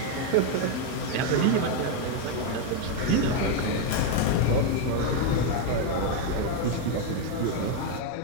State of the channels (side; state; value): both; different; correlation 0.01